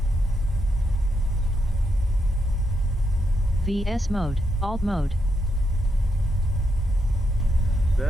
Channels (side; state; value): both; normal; correlation 0.81